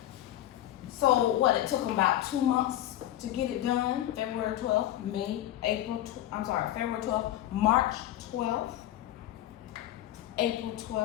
So what, it took them about 2 months to get it done. February 12th, February 12th, March 12th, April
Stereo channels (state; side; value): quieter; right; 13.4 dB